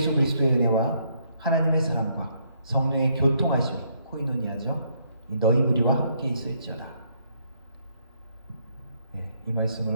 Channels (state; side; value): inverted; both; correlation -0.72